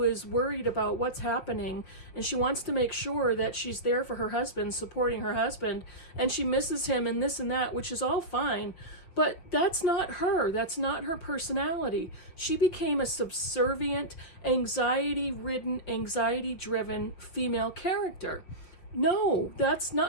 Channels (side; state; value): right; late; 5.6 ms